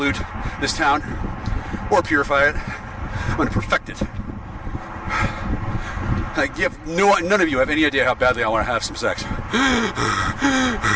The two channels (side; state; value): both; identical; correlation 1.00